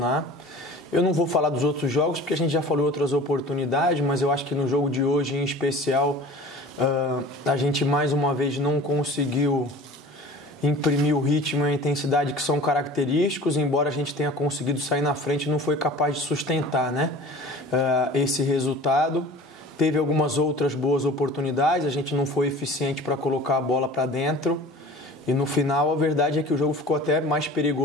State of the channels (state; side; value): normal; both; correlation 0.41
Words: Eu não vou falar dos outros jogos, porque a gente já falou outras oportunidades, mas eu acho que no jogo de hoje, em especial, a gente mais uma vez não conseguiu imprimir o ritmo e a intensidade que são característicos, embora a gente tenha conseguido sair na frente, não foi capaz de sustentar, né? Esse resultado. Teve algumas outras boas oportunidades, a gente não foi eficiente para colocar a bola para dentro, e no final a verdade é que o jogo ficou até mais